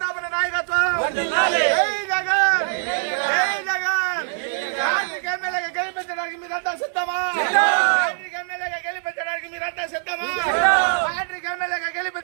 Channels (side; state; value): left; silent; digital silence